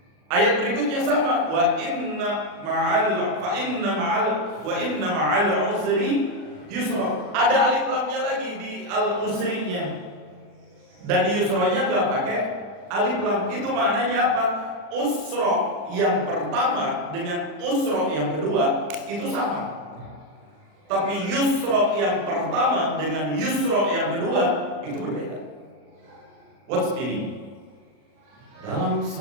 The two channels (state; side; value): late; left; 40 ms